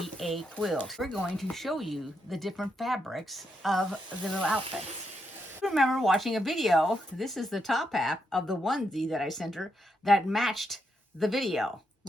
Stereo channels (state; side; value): normal; both; correlation 0.81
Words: a quilt. We're going to show you the different fabrics of the little outfits. I remember watching a video. This is the top half of the onesie that I sent her that matched the video